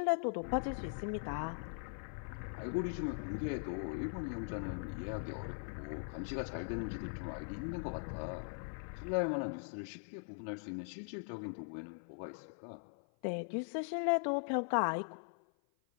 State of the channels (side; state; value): right; silent; 51 dB below the other